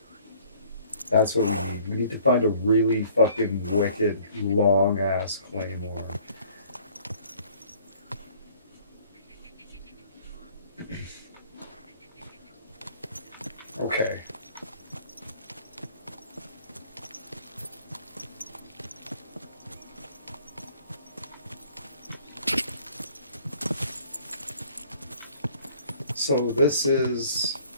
That's what we need. We need to find a really fucking wicked, long-ass claymore. Okay. So this is...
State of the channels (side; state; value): both; inverted; correlation -0.56